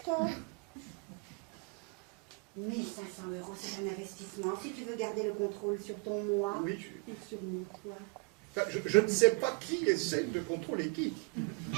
1500 €, c'est un investissement. Si tu veux garder le contrôle sur ton moi, Oui, et sur mon toi. enfin, je ne sais pas qui essaie de contrôler qui.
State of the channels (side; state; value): left; quieter; 30.4 dB